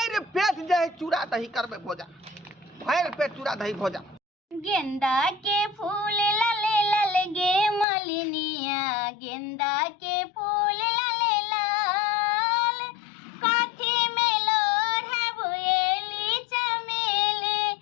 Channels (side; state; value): right; drops out; at 7.9 s